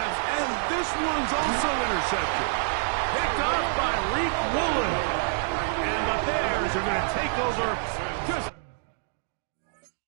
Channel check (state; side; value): silent; left; digital silence